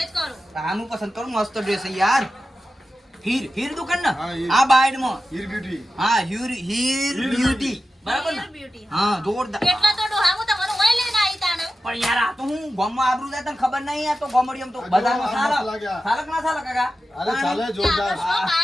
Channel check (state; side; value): normal; both; correlation 0.93